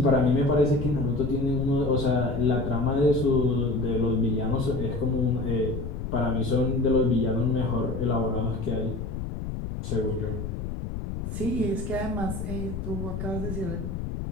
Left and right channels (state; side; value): noise; left; rumble, 5 dB below the sound